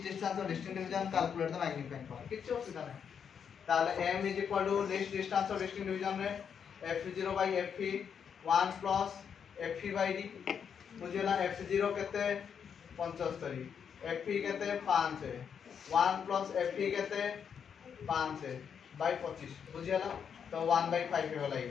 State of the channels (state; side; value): quieter; right; 7.3 dB